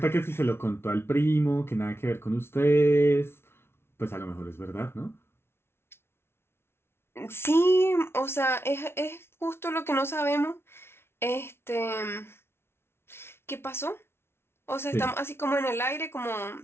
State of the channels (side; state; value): right; late; 0.12 ms